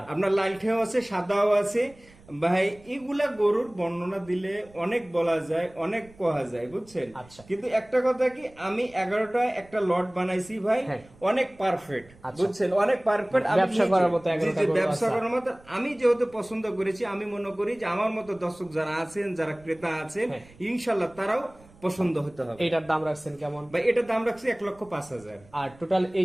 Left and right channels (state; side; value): noise; right; rumble, 25 dB below the sound